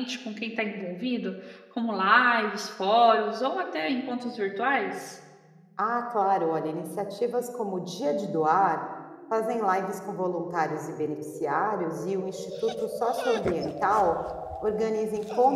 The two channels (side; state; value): both; identical; correlation 1.00